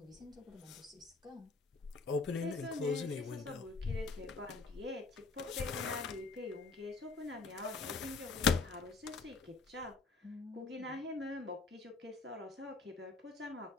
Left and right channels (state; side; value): quieter; right; 4.1 dB